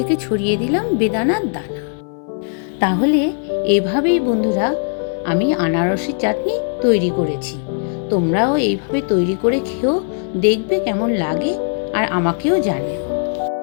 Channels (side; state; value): right; silent; 67 dB below the other